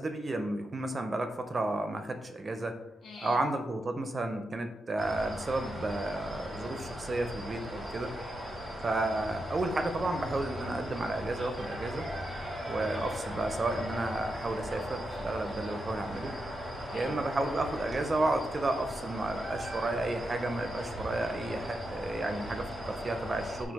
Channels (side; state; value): both; normal; correlation 0.87